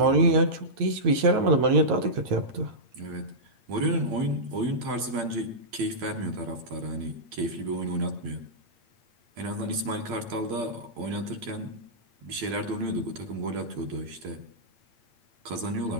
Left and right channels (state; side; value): late; left; 8.6 ms